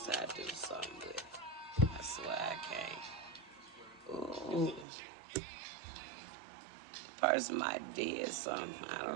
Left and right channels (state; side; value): drops out; left; at 4.9 s